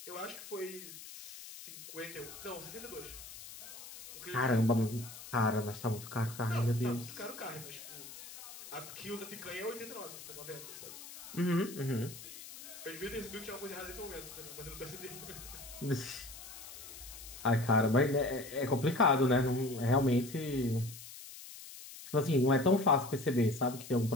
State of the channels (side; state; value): left; noise; hiss, 14 dB below the sound